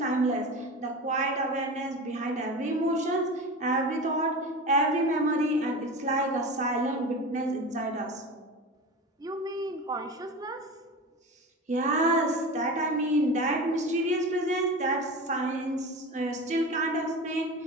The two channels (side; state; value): both; normal; correlation 0.29